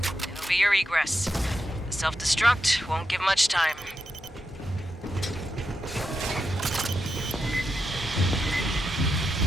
It'll be your egress. The self-destruct won't give much time.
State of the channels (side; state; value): both; normal; correlation 0.87